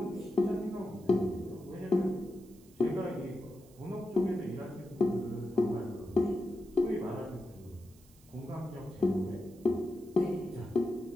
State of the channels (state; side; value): noise; right; hiss, 27 dB below the sound